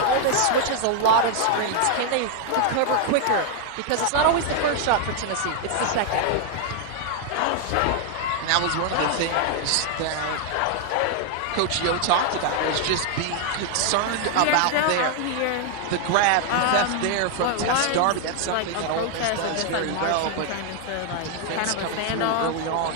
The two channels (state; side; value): different; both; correlation 0.00